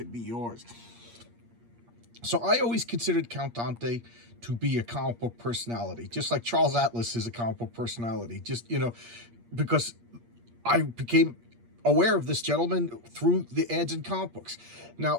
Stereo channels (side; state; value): left; late; 8.5 ms